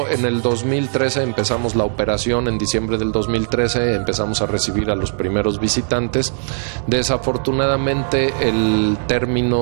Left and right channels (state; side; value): silent; left; digital silence